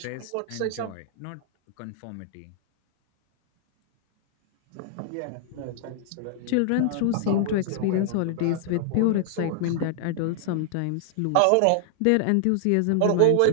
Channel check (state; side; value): different; both; correlation 0.00